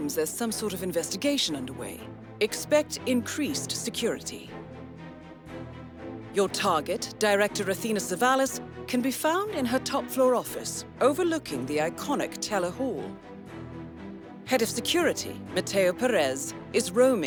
there's some sort of investigation underway. Expect increased security. Your target, Director Athena Savalas, can be found in her top-floor office, overlooking the iconic Teller Hall. Head of Security, Mateo Perez, is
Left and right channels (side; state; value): both; identical; correlation 1.00